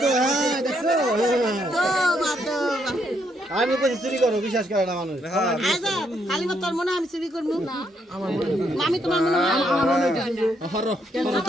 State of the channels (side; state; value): both; normal; correlation 0.75